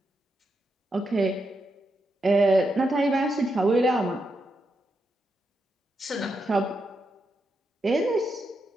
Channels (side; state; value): both; normal; correlation 0.84